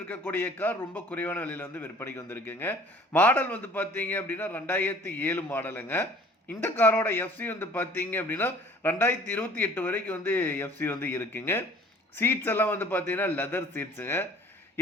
கார் ரொம்ப குறைவான விலையில் வந்து விற்பனைக்கு வந்திருக்குங்க. மாடல் வந்து பார்த்தீங்க அப்படின்னா 2007 மாடலுங்க. இந்த காரோட எஃப்சி வந்து பார்த்தீங்க அப்படின்னா 2028 வரைக்கும் வந்து எஃப்சி வந்து இருக்குங்க. சீட்ஸ் எல்லாம் வந்து பார்த்தீங்கன்னா லெதர் சீட்ஸுங்க.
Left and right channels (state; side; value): normal; both; correlation 0.51